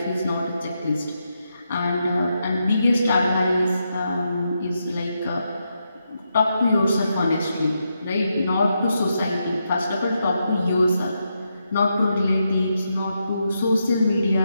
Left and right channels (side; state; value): both; inverted; correlation -0.83